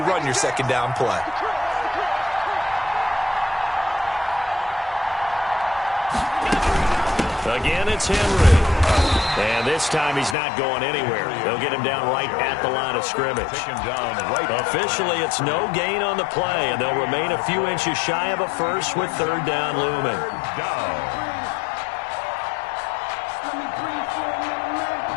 run your 2nd down play. Again, it's Henry. And this time he's not going anywhere. They'll get him down right at the line of scrimmage. Officially, it's no gain on the play, and they'll remain a few inches shy of a first with 3rd down looming.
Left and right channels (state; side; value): drops out; right; at 10.4 s